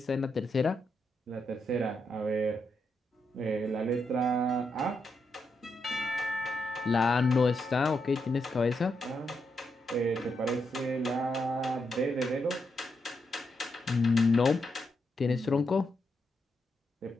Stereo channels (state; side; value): normal; both; correlation 0.82